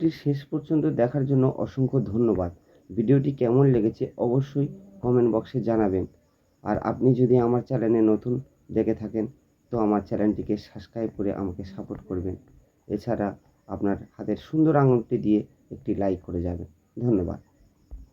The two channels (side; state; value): both; identical; correlation 1.00